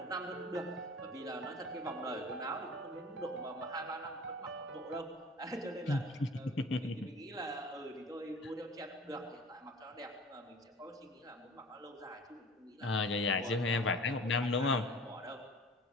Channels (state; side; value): normal; both; correlation 0.42